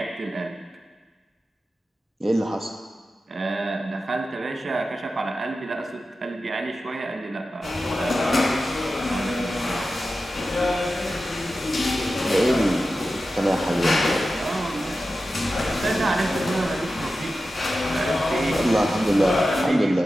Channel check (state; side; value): normal; both; correlation 0.93